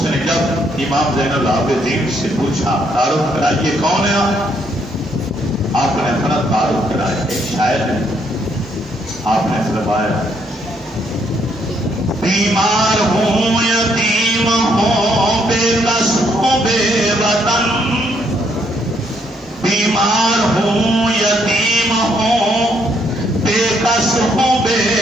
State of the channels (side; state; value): both; normal; correlation 0.72